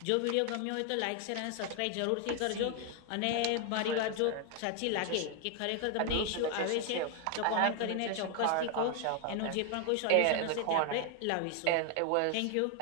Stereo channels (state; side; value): different; both; correlation 0.00